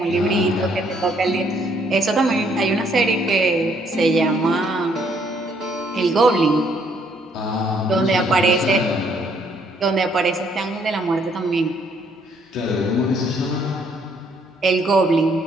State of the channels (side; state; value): both; normal; correlation 0.67